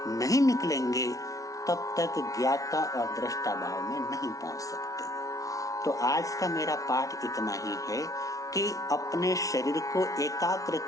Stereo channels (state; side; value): late; right; 0.17 ms